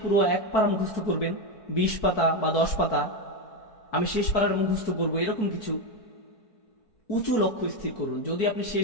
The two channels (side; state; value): right; late; 4.6 ms